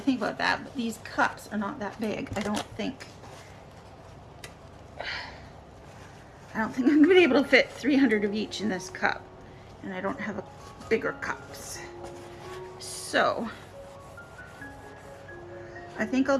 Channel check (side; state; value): both; identical; correlation 1.00